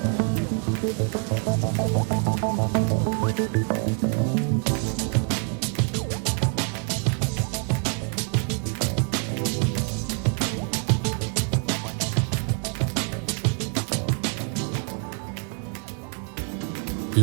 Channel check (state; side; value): quieter; left; 39.5 dB